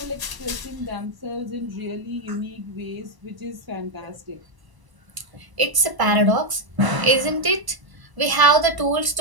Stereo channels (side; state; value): left; late; 1.0 ms